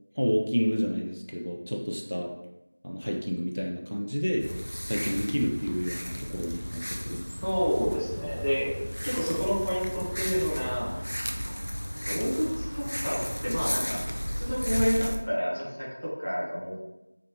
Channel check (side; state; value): both; inverted; correlation -1.00